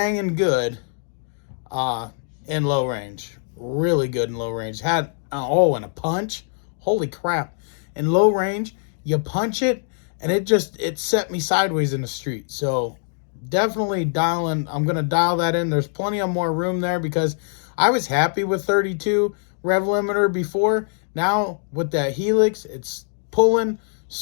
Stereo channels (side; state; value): right; silent; digital silence